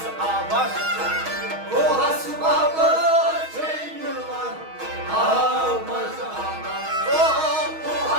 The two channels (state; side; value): late; left; 6.3 ms